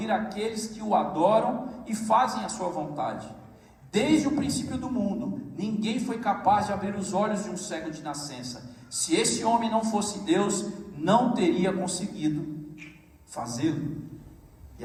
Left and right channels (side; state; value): both; identical; correlation 1.00